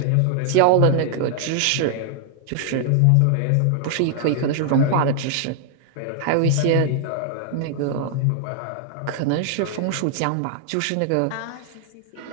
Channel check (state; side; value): different; both; correlation 0.00